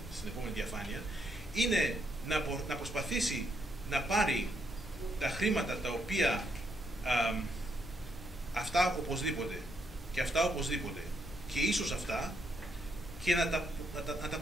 επόμενη διαφάνεια, είναι να προσπαθήσει να πάρει τα χρήματα τα οποία αυτά οπωσδήποτε και αυτά οπωσδήποτε και ίσως αυτά, και να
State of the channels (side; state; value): left; noise; rumble, 15 dB below the sound